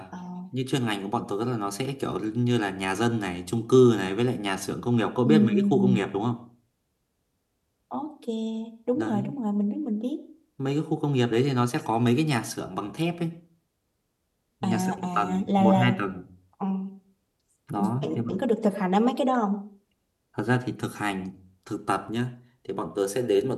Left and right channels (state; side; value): identical; both; correlation 1.00